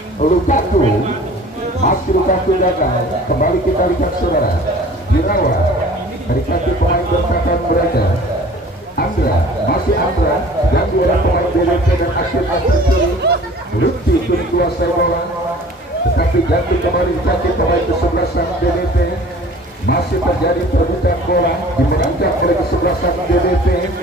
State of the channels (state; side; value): normal; both; correlation 0.47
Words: Lukaku, masih Lukaku gagal. Kembali kita lihat saudara Birawa dari kaki pemain bertahan mereka masih Andra yang diorang pemain BBP dan akhirnya tercuri. Lutfi kini kuasai bola, tetapi ganti kembali kaki pemain kesebelasan BBP. Masih terjadi perebutan bola, dimenangkan oleh kesebelasan BBP